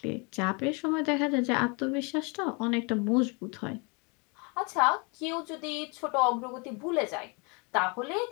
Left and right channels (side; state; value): right; quieter; 31.8 dB